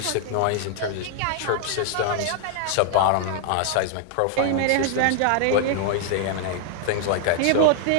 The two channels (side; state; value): both; different; correlation 0.00